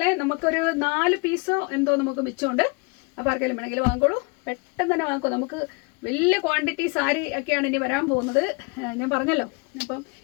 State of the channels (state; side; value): quieter; right; 30.5 dB